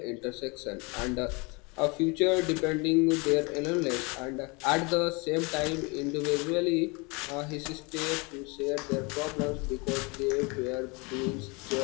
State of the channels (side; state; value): right; quieter; 28.6 dB